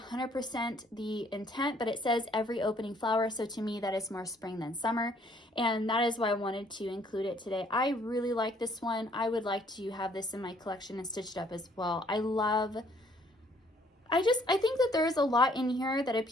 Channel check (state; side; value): normal; both; correlation 0.63